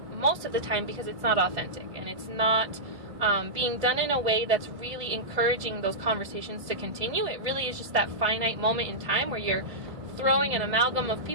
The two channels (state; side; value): late; left; 1.7 ms